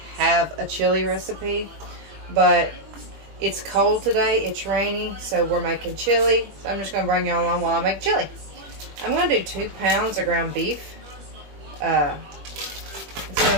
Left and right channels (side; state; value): left; late; 20 ms